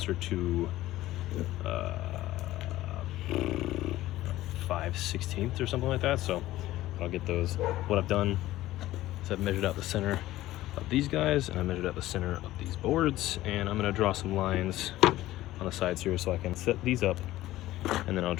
to 5/16 or something like that. So I'll get those. What I've done is I've measured out the center of these guys, and I measured out the center of these boards, and I'm going to draw some lines on the sides here so I can set these up, and then I'll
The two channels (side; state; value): right; quieter; 15.7 dB